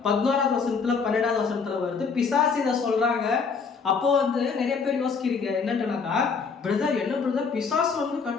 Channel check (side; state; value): right; quieter; 5.4 dB